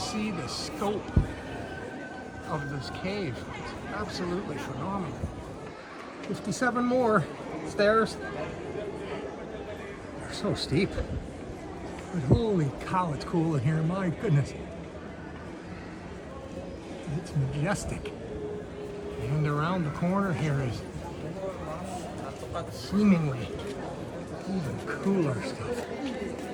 the scope of this cave. It's absolutely phenomenal. 57 more stairs. They're so steep. But holy cow, it's cool in here, my goodness. It's majestic. And around the corner here is seemingly even cooler stuff.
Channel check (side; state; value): both; identical; correlation 1.00